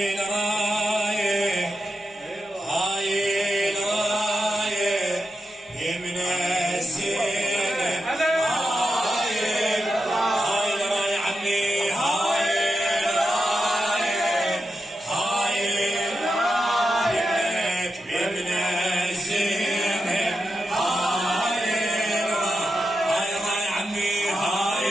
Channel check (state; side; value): normal; both; correlation 0.88